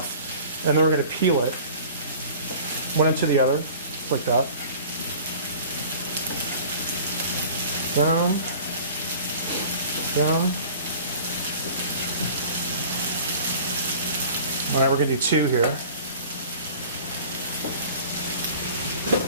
and then we're going to peel it one into the other, like that. Down, down. All right, we're going to do 2 here.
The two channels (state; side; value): inverted; both; correlation -0.44